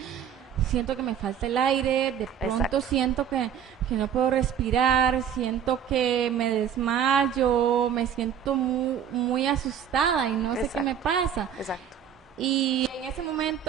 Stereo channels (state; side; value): quieter; left; 8.7 dB